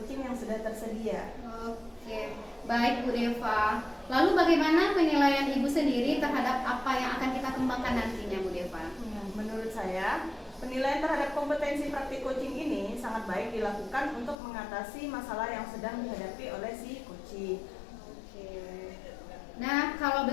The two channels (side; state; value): right; drops out; at 14.4 s